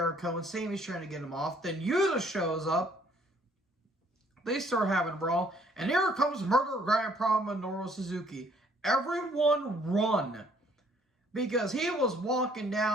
and Sami's trying to get him off. Then Yuta shows up. They start having a brawl. And here comes Murder Grandpa Minoru Suzuki. Everyone run. Because he was walking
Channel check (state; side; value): normal; both; correlation 0.63